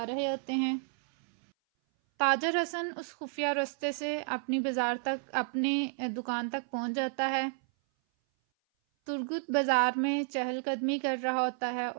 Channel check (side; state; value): left; silent; 57 dB below the other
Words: رہے ہوتے ہیں۔ تاجر حسن اس خفیہ رستے سے اپنی دکان تک پہنچ جاتا ہے۔ ترگت بازار میں چہل قدمی کر رہا ہوتا ہے